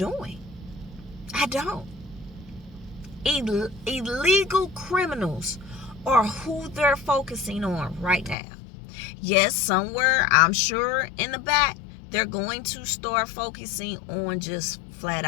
I don't. Illegal criminals are who they're focusing on right now. Yes, somewhere, I'm sure in the back, they're going to start focusing on just flat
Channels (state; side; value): drops out; right; at 8.3 s